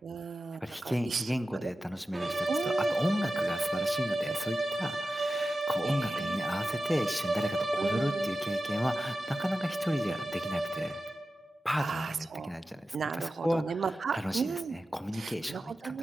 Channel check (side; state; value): both; normal; correlation 0.93